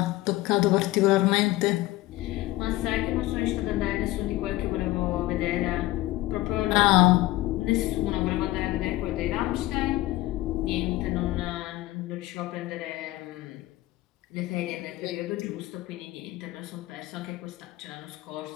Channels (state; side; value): quieter; right; 17.7 dB